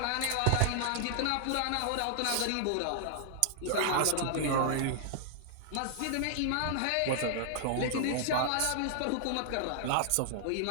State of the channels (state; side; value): different; both; correlation -0.01